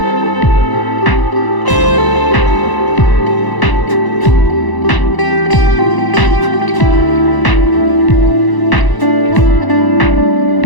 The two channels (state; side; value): late; right; 1.0 ms